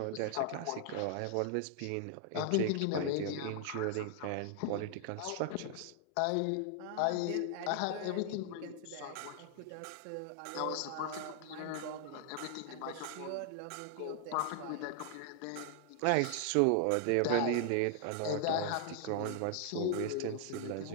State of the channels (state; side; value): different; both; correlation 0.00